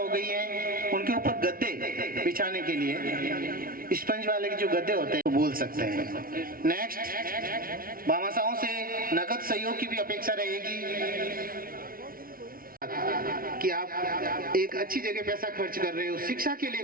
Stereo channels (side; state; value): left; late; 0.42 ms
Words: गई है। उनके ऊपर गद्दे बिछाने के लिए स्पंज वाले के जो गद्दे होते हैं वो बोल सकते हैं। नेक्स्ट भामाशाहों से नकद सहयोग की भी अपेक्षा रहेगी। कि आप एक अच्छी जगह पैसा खर्च कर रहे हो, शिक्षा के लिए